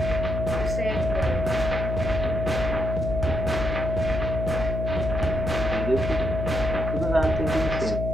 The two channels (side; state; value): left; noise; hum, 2 dB below the sound